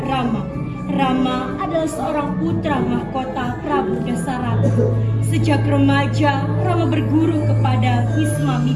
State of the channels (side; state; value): both; identical; correlation 1.00